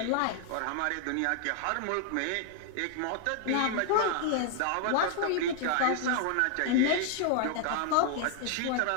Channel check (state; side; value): different; both; correlation 0.00